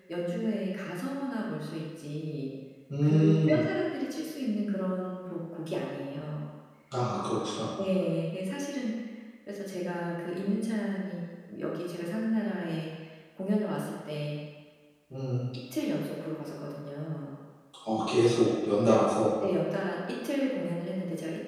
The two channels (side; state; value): both; identical; correlation 1.00